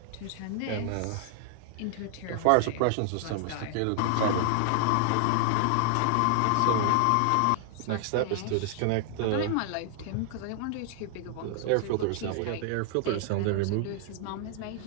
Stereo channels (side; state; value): both; different; correlation 0.00